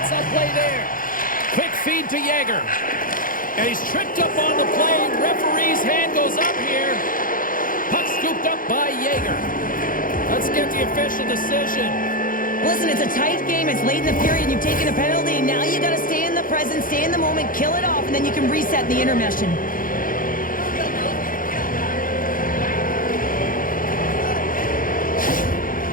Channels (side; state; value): right; late; 0.40 ms